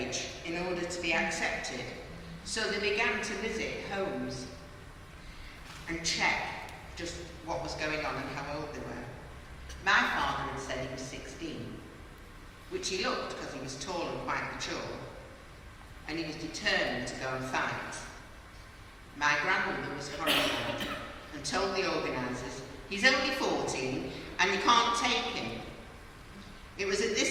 in order to be accepted, so they began to visit homes and check just what was going on and how old they were. My father had said he was 16. which he looked because he was tall and quite mature, and he was determined to go and fight. My grandmother was horrified and told the organisers, "He's only 14 and you can't take him." It was at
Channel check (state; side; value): identical; both; correlation 1.00